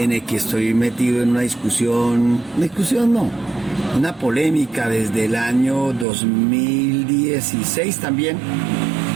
el que estoy metido en una discusión no, una polémica desde el año 2016 también,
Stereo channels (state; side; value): drops out; left; at 6.1 s